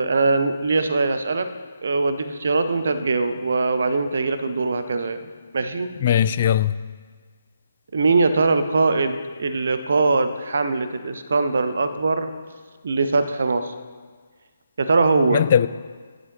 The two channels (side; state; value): both; inverted; correlation -0.80